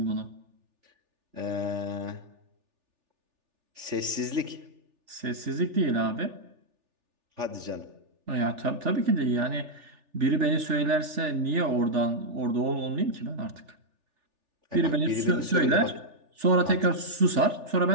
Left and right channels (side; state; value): left; late; 3.4 ms